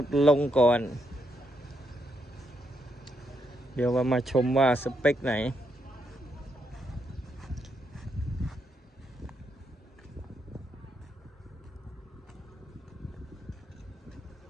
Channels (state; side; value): normal; both; correlation 0.79